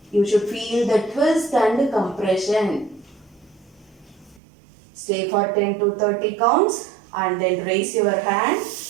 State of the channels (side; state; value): left; drops out; at 4.4 s